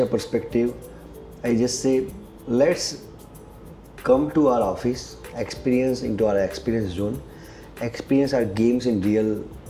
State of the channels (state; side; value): identical; both; correlation 1.00